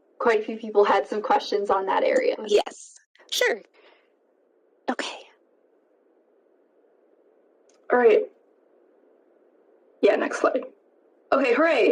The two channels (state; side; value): identical; both; correlation 1.00